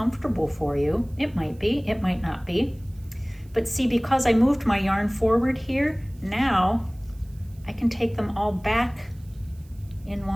for you. It might be, it might not be. But see, because I moved my yarn forward here, now I can take them all back in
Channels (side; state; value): right; noise; hiss, 30 dB below the sound